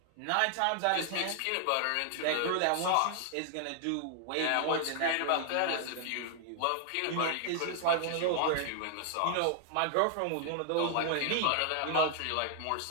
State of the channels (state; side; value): different; both; correlation 0.00